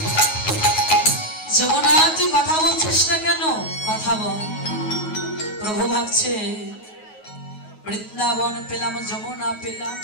যমুনা তুই কথা বলছিস না কেন? কথা বল। প্রভু ভাবছে বৃন্দাবন পেলাম, যমুনা পেলাম,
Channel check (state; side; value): late; right; 9.4 ms